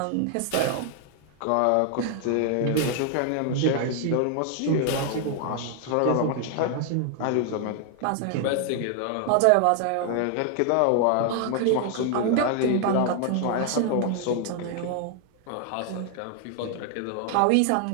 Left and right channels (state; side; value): different; both; correlation 0.00